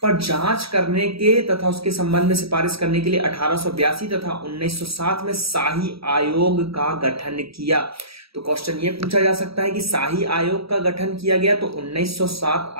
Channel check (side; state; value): left; late; 0.76 ms